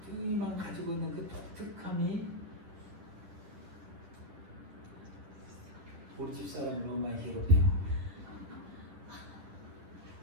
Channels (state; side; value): late; left; 10 ms